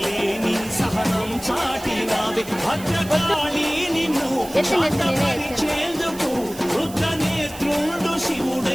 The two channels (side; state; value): right; noise; hiss, 16 dB below the sound